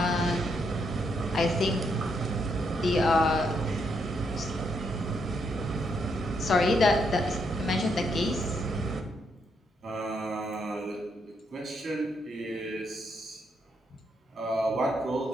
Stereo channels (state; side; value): normal; both; correlation 0.77